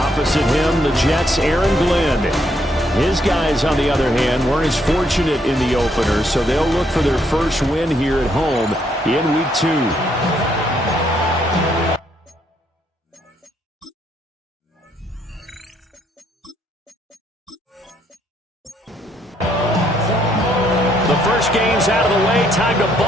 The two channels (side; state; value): both; normal; correlation 0.71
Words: him, the Jets' Aaron Glenn. His guys, on the other hand, weren't as fortunate in the opener, so they'll look for their first win here at home in week 2. The first game's out of the way. Time to